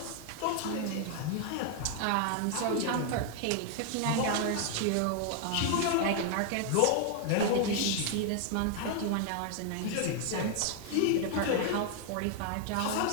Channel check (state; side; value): different; both; correlation 0.00